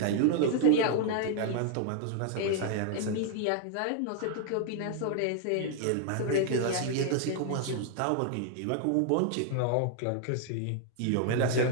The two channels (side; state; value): both; different; correlation 0.00